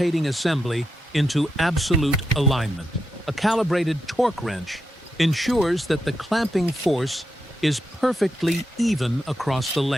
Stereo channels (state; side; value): normal; both; correlation 0.85